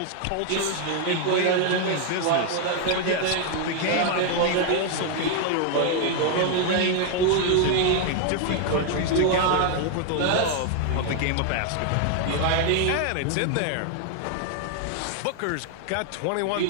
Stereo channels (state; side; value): different; both; correlation 0.00